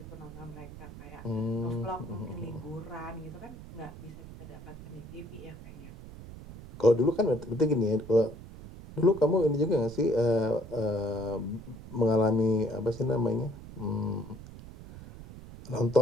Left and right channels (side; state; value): right; noise; rumble, 15 dB below the sound